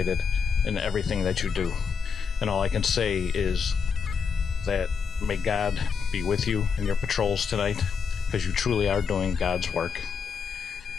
in everything that you do. And all I can say is that may God be with you in your patrols tonight, because you truly are doing God's work,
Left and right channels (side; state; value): right; quieter; 6.1 dB